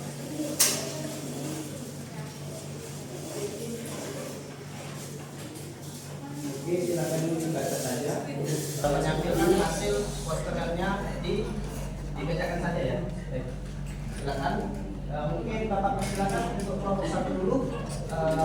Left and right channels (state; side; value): identical; both; correlation 1.00